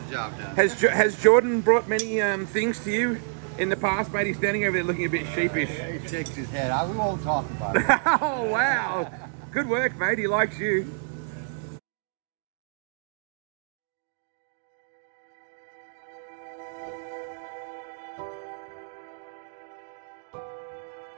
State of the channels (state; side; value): silent; left; digital silence